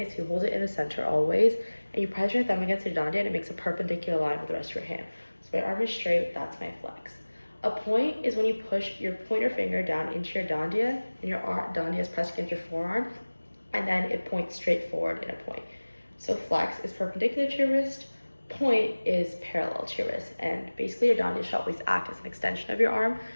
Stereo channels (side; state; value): both; inverted; correlation -1.00